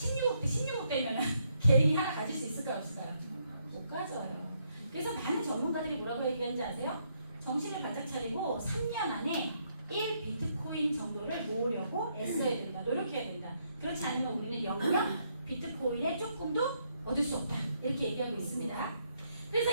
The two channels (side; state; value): both; inverted; correlation -0.75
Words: 되면 개인이 하나 가질 수 있을까요? 없을까요? 못 가져요. 그래서 많은 전문가들이 뭐라고 얘기하는지 아세요? 정신을 바짝 차리고 3년 안에 1비트코인 정도를 모으려고 애써야 된다. 노력해야 된다. 그렇지 않으면 우리는 영영 비트코인에 조금도 얻을 수 없다. 이렇게 얘기하고 있습니다. 그래서